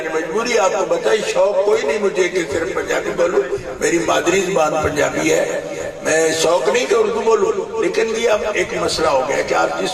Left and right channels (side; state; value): both; identical; correlation 1.00